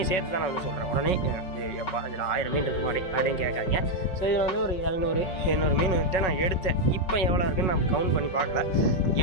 சேர்த்து தான் நான் வந்து சொல்கிறேன். உடனே எப்பா இதில் 1000 மீன் இருக்கு மாதிரி அப்படின்னு கேட்காங்க. ஸோ இதில் வந்து ஒரு 700 மீன் வந்துட்டு நான் எடுத்தேன். இப்போ எவ்வளோ இருக்குன்னு நான் கவுண்ட் பண்ணி பார்க்கல.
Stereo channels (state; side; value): late; right; 5.4 ms